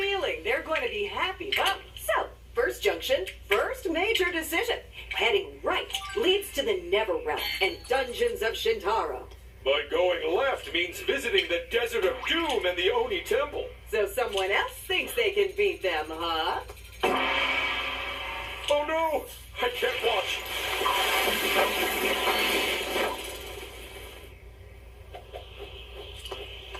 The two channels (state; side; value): identical; both; correlation 1.00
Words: they're going to be happy, huh? So, first junction, first major decision. Heading right leads to the Netherrealm and Dungeons of Shintaro. But going left means visiting the Desert of Doom and the Oni Temple. So someone else thinks they can beat them, huh? Oh no! I can't watch.